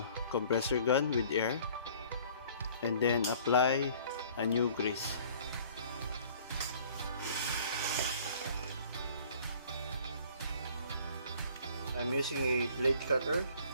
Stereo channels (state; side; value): inverted; both; correlation -0.53